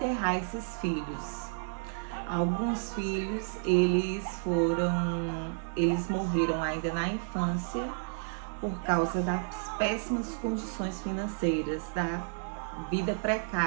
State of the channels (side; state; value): left; silent; 57 dB below the other